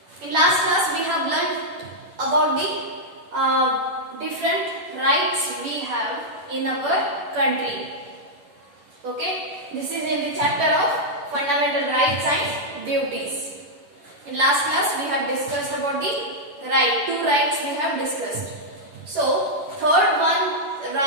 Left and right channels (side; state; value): left; late; 11 ms